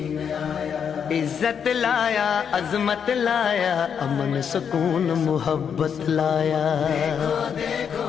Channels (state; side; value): quieter; right; 7.4 dB